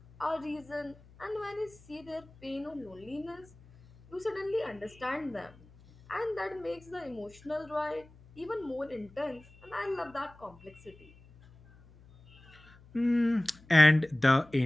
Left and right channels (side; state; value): left; noise; hum, 24 dB below the sound